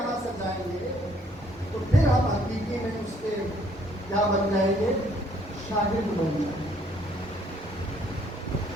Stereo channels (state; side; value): normal; both; correlation 0.64